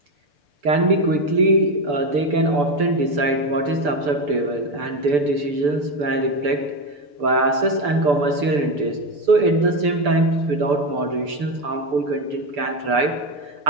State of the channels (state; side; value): late; left; 6.9 ms